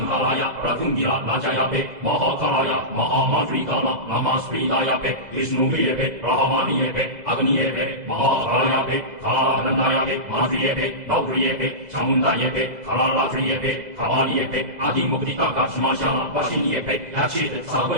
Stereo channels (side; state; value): left; late; 2.0 ms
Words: Pratungira Najayape, Mahakalaya, Mahamadrikana, Amaspridayape, Vishnu Vyape, Rahamaniyepe, Agniyepe, Mahakalayape, Kalandayape, Madriyepe, Gauriyepe, Chamundayepe, Kalalatriyepe, Kavaliyepe, Adimukdita Kashmasha, Vashinyepe, Lachit,